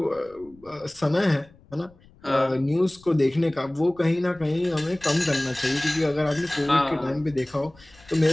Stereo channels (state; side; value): noise; left; rumble, 27 dB below the sound